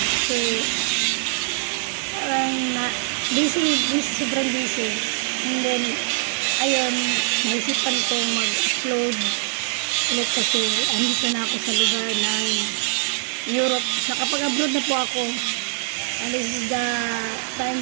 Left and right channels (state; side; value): silent; left; 57 dB below the other